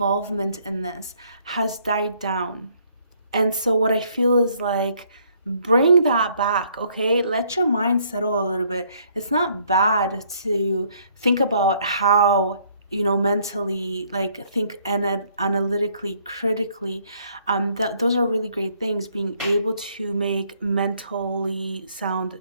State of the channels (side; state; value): both; inverted; correlation -0.66